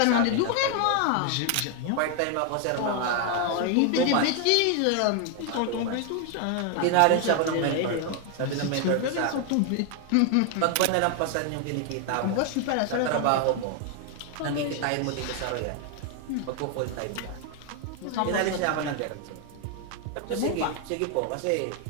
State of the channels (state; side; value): different; both; correlation 0.01